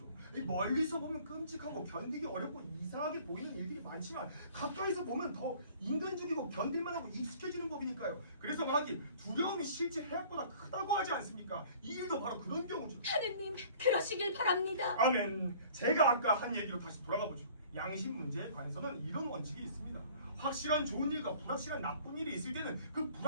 이 멀리서 보면 끔찍하고 견디기 어렵고 이상하게 보이는 일들이 많지만 가까이서 보면 더 인간적이고 견딜만하고 익숙해지는 법이니까요. 그래서 말하기 두려움이 실제 해악보다 크다고 하지 않습니까? 이 일도 바로 그런 경우죠. 하느님, 그러시길 바랍니다. 아멘. 제가 아까 한 얘기로 다시 돌아가 보죠. 양심 문제에 관해서는 이런 원칙이 있습니다. 확실한 좋은 일과 불확실한 나쁜 일이 있을 때는 그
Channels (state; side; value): inverted; both; correlation -0.51